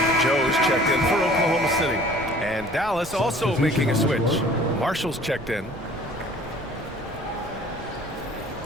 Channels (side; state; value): right; noise; rumble, 17 dB below the sound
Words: Joe's checked in for Oklahoma City. And Dallas also making a switch. Marshall's checked in.